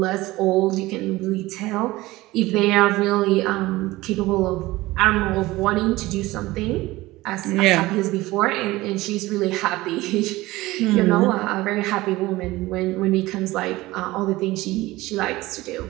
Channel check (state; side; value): quieter; left; 18.9 dB